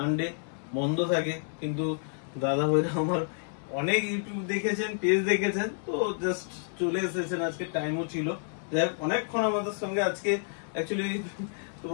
বন্ধ থাকে, কিন্তু দাদা ভাইরা আমার অনেক ইউটিউব দেখেছেন, পেজ দেখেছেন, তো জাস্ট চলে এসেছেন। আজকে টাইমও ছিল, যাই হোক অনেকক্ষণ আমাদের সঙ্গে আজকে অ্যাকচুয়ালি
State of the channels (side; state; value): right; silent; 58 dB below the other